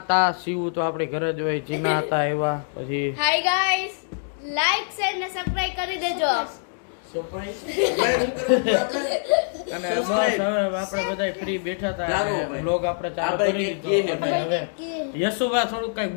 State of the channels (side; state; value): right; silent; digital silence